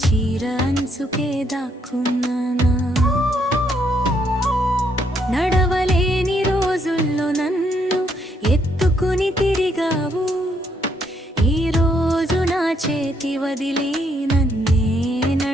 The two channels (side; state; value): both; normal; correlation 0.73